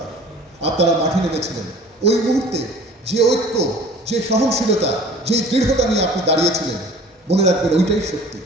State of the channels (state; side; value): normal; both; correlation 0.46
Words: আপনারা মাঠে নেমেছিলেন, ওই মুহূর্তে যে ঐক্য, যে সহনশীলতা, যে দৃঢ়তা নিয়ে আপনি দাঁড়িয়েছিলেন, মনে রাখবেন ওইটাই সত্যি।